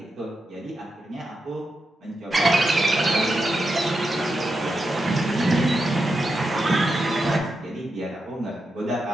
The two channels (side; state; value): both; normal; correlation 0.87